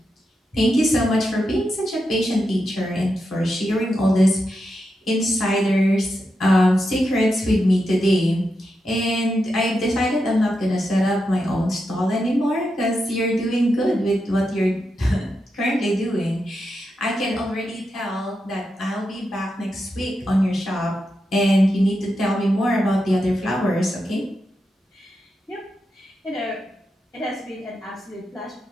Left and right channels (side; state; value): both; normal; correlation 0.87